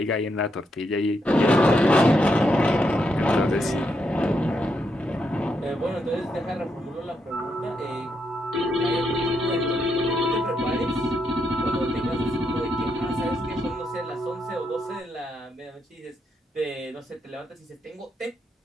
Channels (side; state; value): both; normal; correlation 0.80